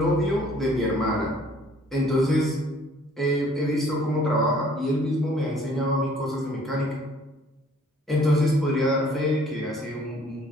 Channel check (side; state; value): both; normal; correlation 0.57